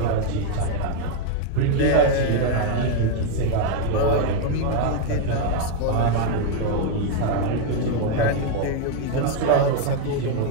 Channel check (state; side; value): different; both; correlation 0.00